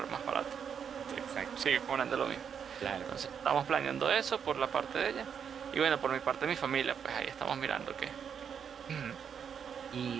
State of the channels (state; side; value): quieter; left; 7.5 dB